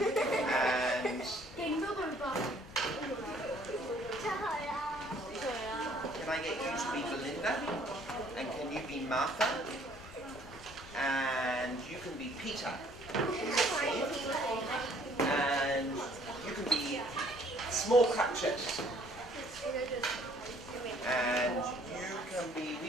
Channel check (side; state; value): both; normal; correlation 0.60